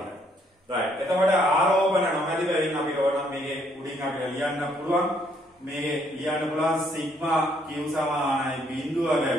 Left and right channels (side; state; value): both; normal; correlation 0.69